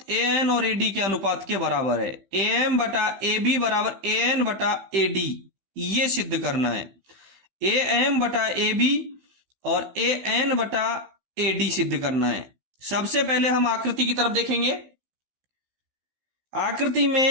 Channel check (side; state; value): left; late; 15 ms